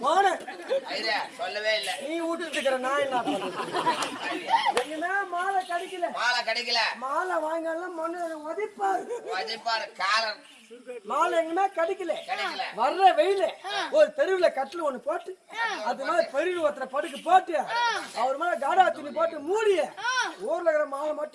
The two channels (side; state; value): both; identical; correlation 1.00